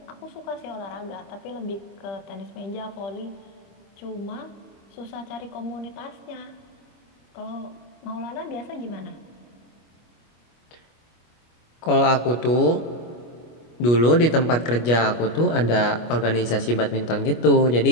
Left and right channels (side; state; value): right; late; 25 ms